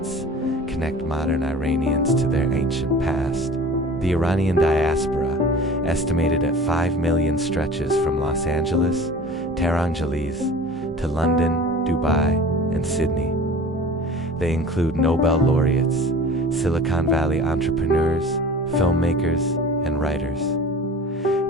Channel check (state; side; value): normal; both; correlation 0.41